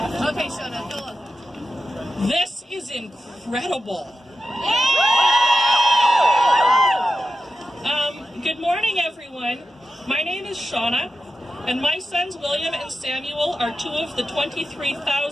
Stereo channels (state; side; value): normal; both; correlation 0.91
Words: Okay, Shauna, go on. This is incredible. Good morning, everyone. My name is Shauna, and my sons William and Samuel are 2 of the